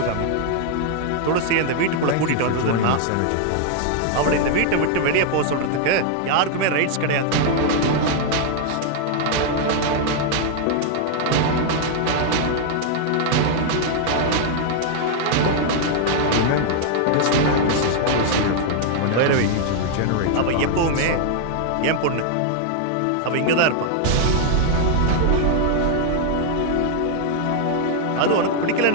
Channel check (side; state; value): both; different; correlation 0.00